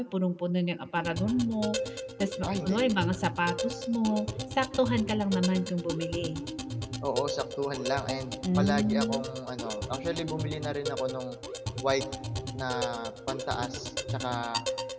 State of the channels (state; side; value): identical; both; correlation 1.00